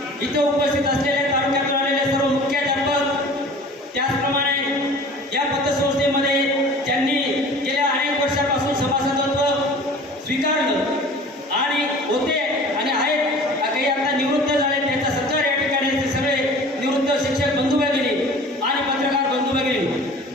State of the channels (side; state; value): both; normal; correlation 0.44